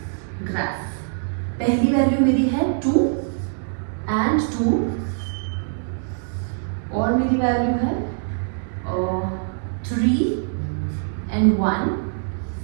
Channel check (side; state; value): left; silent; digital silence